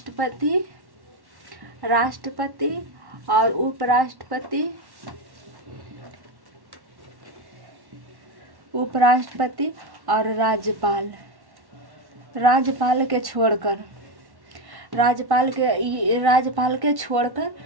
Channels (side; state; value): left; late; 1.1 ms